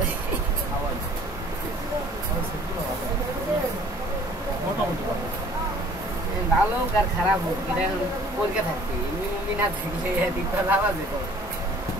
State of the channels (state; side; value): normal; both; correlation 0.53